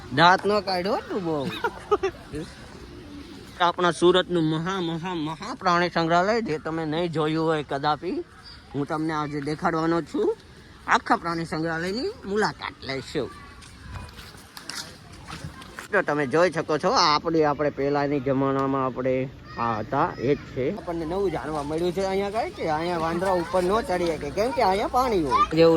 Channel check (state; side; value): identical; both; correlation 1.00